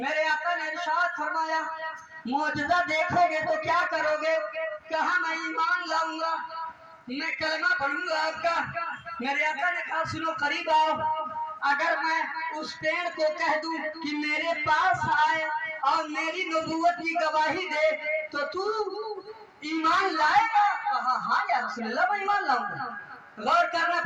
आका ने इरशाद फरमाया मौजज़ा देखोगे तो क्या करोगे? कहा मैं ईमान लाऊंगा, मैं कलमा पढ़ूंगा आपका। मेरे आका ने कहा सुनो करीब आओ, अगर मैं उस पेड़ को कह दूं कि मेरे पास आए और मेरी नबूवत की गवाही दे तो तू ईमान लाएगा? कहा हाँ या रसूल अल्लाह मैं ईमान लाऊंगा। गौर करना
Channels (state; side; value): identical; both; correlation 1.00